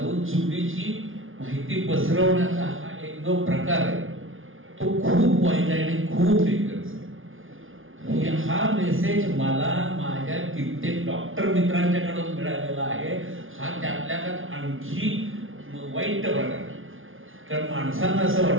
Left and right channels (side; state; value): left; late; 0.58 ms